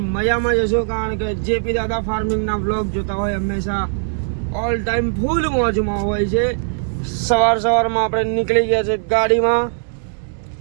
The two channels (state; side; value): silent; left; digital silence